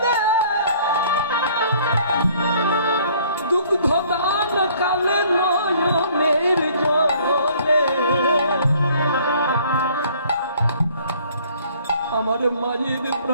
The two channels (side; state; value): both; inverted; correlation -0.57